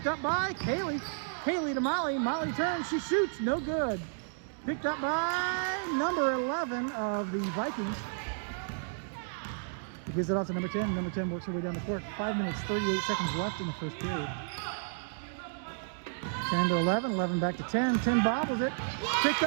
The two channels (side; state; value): left; silent; digital silence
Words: up by Kaylee. Kaylee to Molly. Molly turns. She shoots. No good. Picked up by number 11 of the Vikings. He gives it off to number 10. Number 10 works her way down the court. 5 minutes, 38 seconds left in the first period. 10 to 11. 11 back to 10. 10 bobbles it. Picked